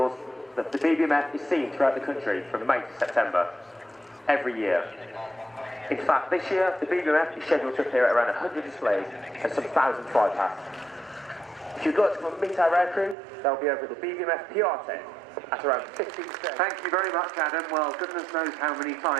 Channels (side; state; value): left; drops out; at 13.2 s